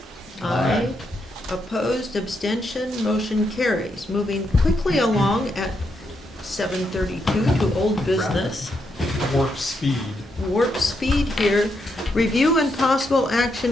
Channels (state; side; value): normal; both; correlation 0.80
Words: Aye. Opposed, abstention, motion carries. Moving quickly along at 7:32 to old business. Warp speed. Warp speed here. Review and possible